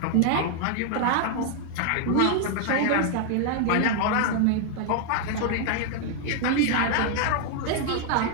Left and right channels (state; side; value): different; both; correlation 0.00